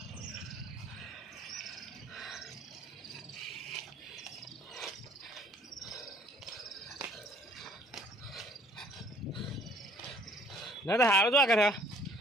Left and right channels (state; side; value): normal; both; correlation 0.59